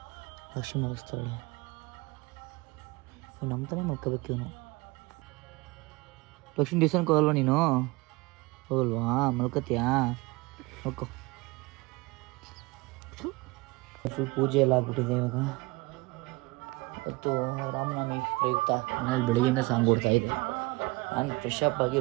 ಲಕ್ಷಿ ಮುಗಿಸ್ತಾಳೆ. ನಮ್ಮ ತಾನೇ ಮಲ್ಕೋಬೇಕು ಇವನು. ಲಕ್ಷ್ಮೀ ದೇವಸ್ಥಾನಕ್ಕೆ ಹೋಗಲ್ವಾ ನೀನು? ಹೋಗಲ್ವಾ? ಮಲ್ಕೋತೀಯಾ? ಮಲ್ಕೋ. ಫುಲ್ ಪೂಜೆ ಎಲ್ಲ ಆಗ್ಬಿಟ್ಟಿದೆ ಇವಾಗ. ಇವತ್ತು ರಾಮನವಮಿ ಪ್ರಯುಕ್ತ ಮನೇಲಿ ಬೆಳಗ್ಗೆಯಿಂದ ಸಾಂಗ್ ಕೊಡ್ತಾ ಇದ್ದೆ. ನಾನು ಫ್ರೆಶ್ ಅಪ್ ಆಗಿ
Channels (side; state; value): left; quieter; 23.8 dB